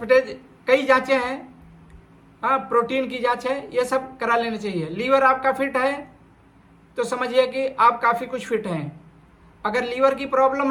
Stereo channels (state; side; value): identical; both; correlation 1.00